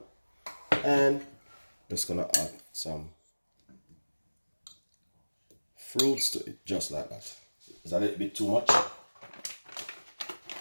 and just gonna add some fruits to it, just like that. It's a little bit too much.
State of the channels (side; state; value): both; inverted; correlation -1.00